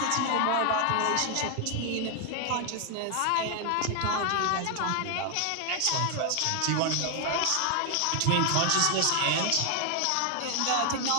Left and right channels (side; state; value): both; different; correlation 0.00